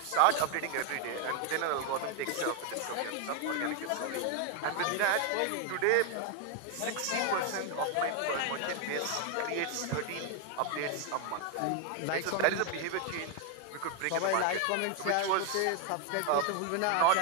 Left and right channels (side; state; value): both; different; correlation 0.01